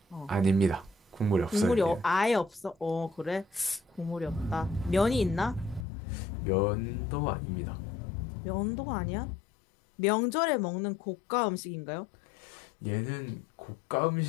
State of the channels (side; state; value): right; drops out; at 5.9 s